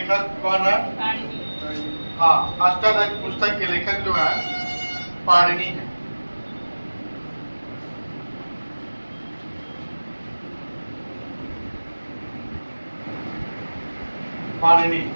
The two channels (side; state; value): both; inverted; correlation -1.00